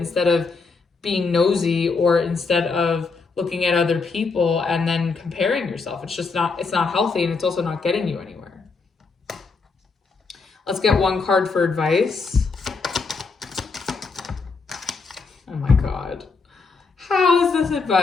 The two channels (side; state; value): right; quieter; 4.5 dB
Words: of being nosy or instead of looking at other people and then comparing yourself. It's not healthy, and it's also not getting you anywhere. Let's get one card for advice. Oh my God. How is this